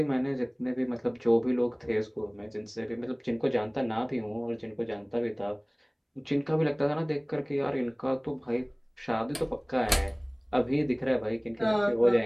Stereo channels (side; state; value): both; identical; correlation 1.00